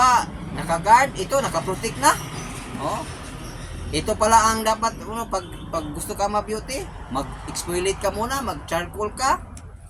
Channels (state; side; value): identical; both; correlation 1.00